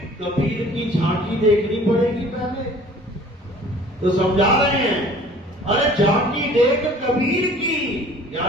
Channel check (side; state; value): both; normal; correlation 0.49